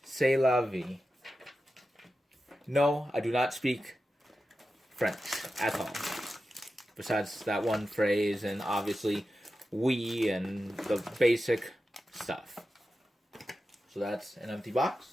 C'est la vie. No, I do not speak French at all. Besides that one phrase, and obviously oui and the basic stuff. So that's an empty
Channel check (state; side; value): normal; both; correlation 0.92